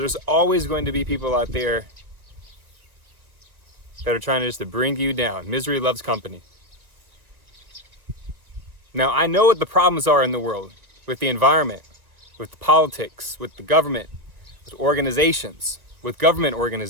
always going to be people out there that are trying just to bring you down. Misery loves company. Now, I know what the problems are in the world with the environment, with the politics, with the government, with organizations, with government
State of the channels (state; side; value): late; left; 1.2 ms